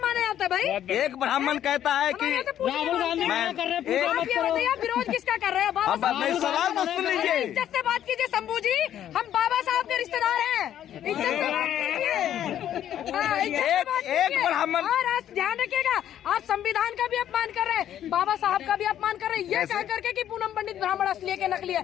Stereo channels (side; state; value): right; quieter; 10.9 dB